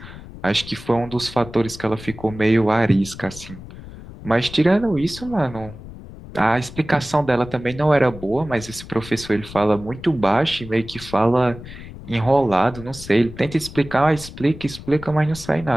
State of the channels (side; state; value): left; noise; rumble, 15 dB below the sound